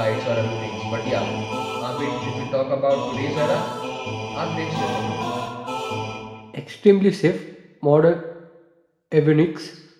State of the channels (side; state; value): both; identical; correlation 1.00